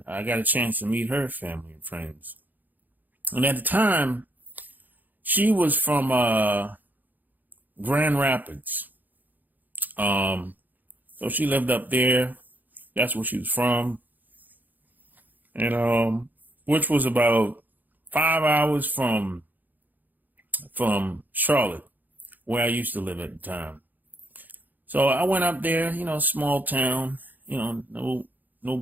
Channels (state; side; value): late; left; 0.085 ms